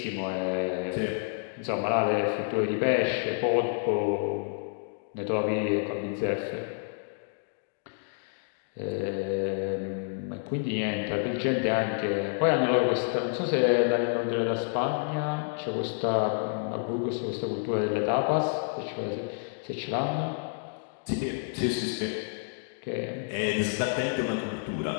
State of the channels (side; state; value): right; silent; digital silence